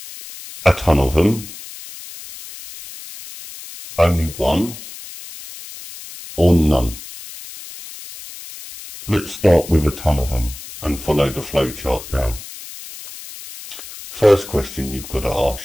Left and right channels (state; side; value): noise; left; hiss, 14 dB below the sound